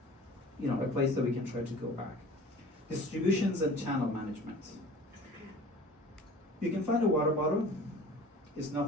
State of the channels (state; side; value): normal; both; correlation 0.44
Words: place that we can try to go back. Distributions and channel management. You can find a water bottle, it's